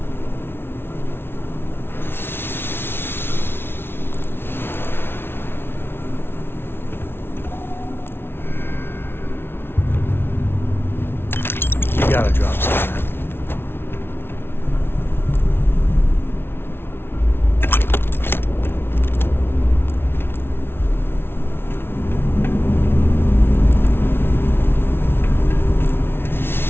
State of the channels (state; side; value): late; right; 0.11 ms